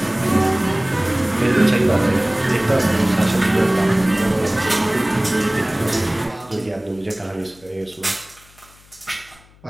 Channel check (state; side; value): noise; left; hum, 28 dB below the sound